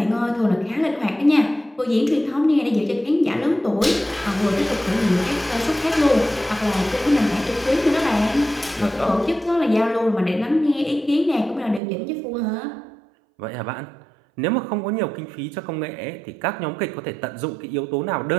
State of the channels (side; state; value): left; drops out; at 11.8 s